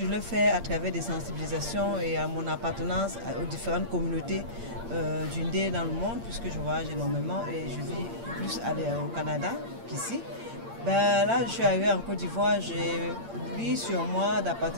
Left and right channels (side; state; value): left; late; 8.7 ms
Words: de le faire à travers des sensibilisations et à mon appartenance aux différentes communautés d'Undé dans le monde, puisque je voyage énormément et je vis plus au Canada qu'ici. Là, je suis arrivée en Côte d'Ivoire, j'ai pris sur moi